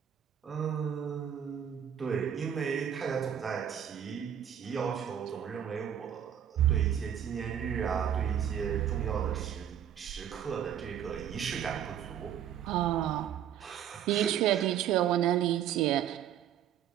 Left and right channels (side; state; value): left; quieter; 9.6 dB